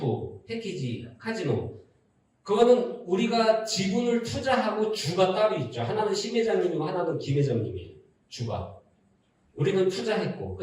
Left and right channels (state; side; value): identical; both; correlation 1.00